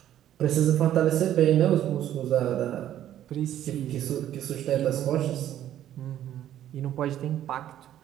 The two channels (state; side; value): quieter; left; 11.7 dB